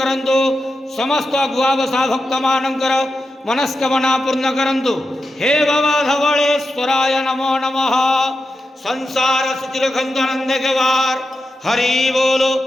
ସମସ୍ତ ଗୁଆବସା ଭକ୍ତମାନଙ୍କର ମନସ୍କାମନା ପୂର୍ଣ୍ଣ କରନ୍ତୁ। ହେ ବାବା ଧବଳେଶ୍ୱରାୟ ନମୋ ନମଃ। ସଂସାର ସୁଖୀ ରଖନ୍ତୁ, ଆନନ୍ଦ କେବାର ହରି ବୋଲ।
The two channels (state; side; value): normal; both; correlation 0.89